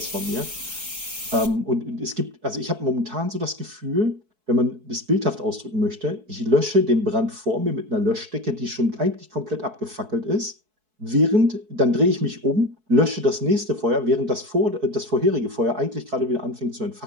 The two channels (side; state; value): left; late; 4.6 ms